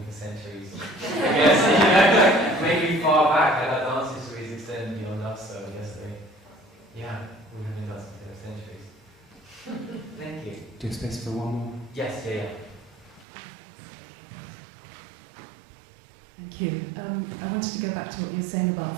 for centuries. I guess, yeah, maybe far back, like our dance histories extend beyond us, so I guess we have been dancing for centuries. Thank you. Do you have space for one more? Yes, yeah. Thank you. I wanted to go back to what you were saying about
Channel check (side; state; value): left; drops out; at 13.2 s